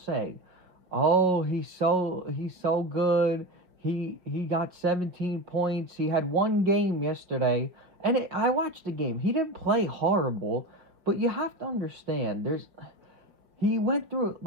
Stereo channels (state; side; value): late; left; 5.6 ms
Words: "Oh, he's so good. He got 17 points. He had one game yesterday." And I watched the game. He didn't play horrible, but you have to understand he went through